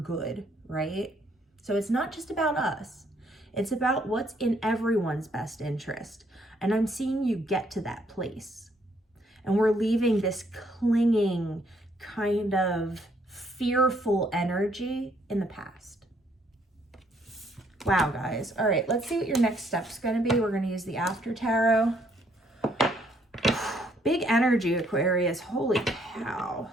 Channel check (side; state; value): both; normal; correlation 0.68